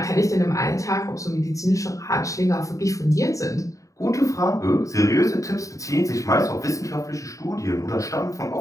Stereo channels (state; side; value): late; right; 0.16 ms